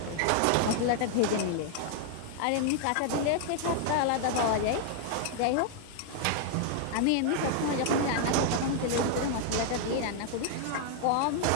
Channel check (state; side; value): different; both; correlation 0.00